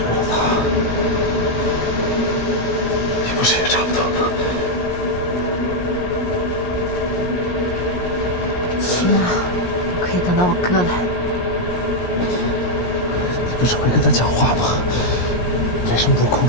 了他。你不是也差不多吗？起码我可以等到我哥来。你不是会跟他讲话吗？为什么不控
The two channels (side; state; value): right; late; 17 ms